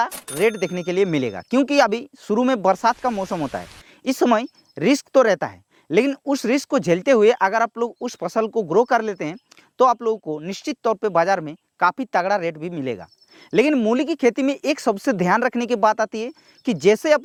रेट देखने के लिए मिलेगा, क्योंकि अभी शुरू में बरसात का मौसम होता है। इस समय रिस्क तो रहता है, लेकिन उस रिस्क को झेलते हुए अगर आप लोग उस फसल को ग्रो कर लेते हैं तो आप लोगों को निश्चित तौर पे बाजार में काफ़ी तगड़ा रेट भी मिलेगा। लेकिन मूली की खेती में एक सबसे ध्यान रखने की बात आती है कि जैसे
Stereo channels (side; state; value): both; identical; correlation 1.00